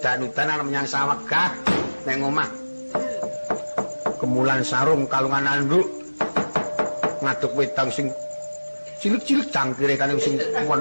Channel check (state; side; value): inverted; both; correlation -1.00